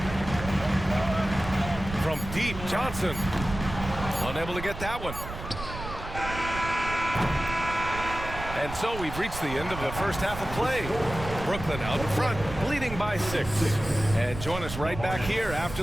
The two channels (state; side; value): noise; right; rumble, 9 dB below the sound